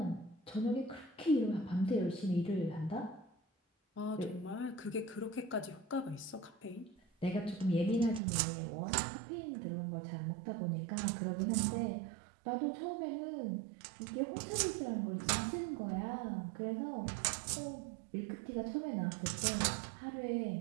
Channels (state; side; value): drops out; left; at 8.2 s